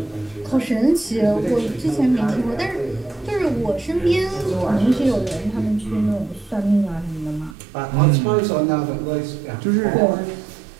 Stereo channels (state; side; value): drops out; left; at 7.6 s